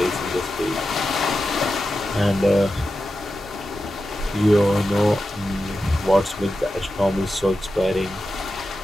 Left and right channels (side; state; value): both; normal; correlation 0.91